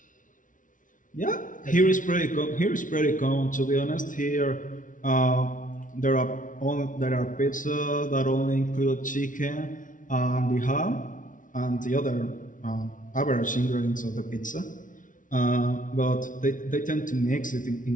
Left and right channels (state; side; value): late; right; 0.38 ms